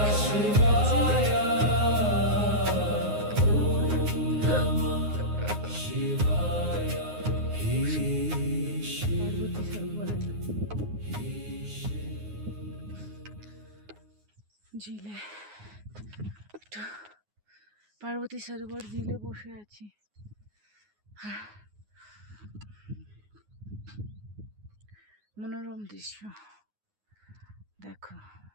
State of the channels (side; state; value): left; late; 9.6 ms